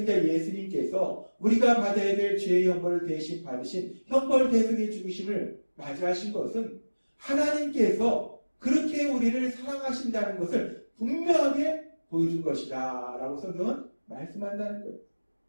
예수님께서 우리가 받아야 될 죄의 형벌을 대신 받으신 형벌 대속의 죽으심을 맞이하신 것은 하나님께서 그렇게 우리를 사랑하신다는 것을 분명하게 보여준 것이다 라고 성경은 말씀한다는 거예요.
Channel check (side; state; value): both; inverted; correlation -1.00